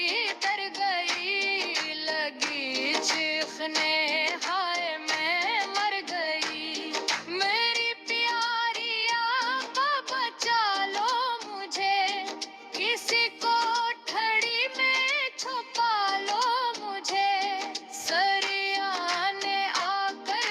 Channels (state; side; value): identical; both; correlation 1.00